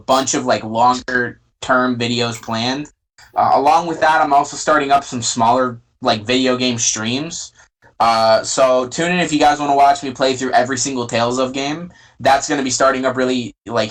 of longer term videos planned. Along with that, I'm also starting up some smaller video game streams. So tune in if you guys want to watch me play through every single Tales of game. That's going to be starting up really like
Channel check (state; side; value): identical; both; correlation 1.00